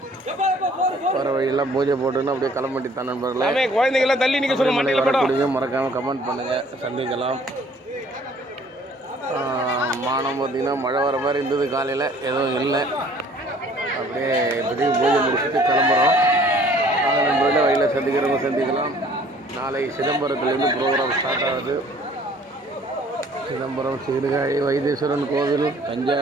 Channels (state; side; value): normal; both; correlation 0.56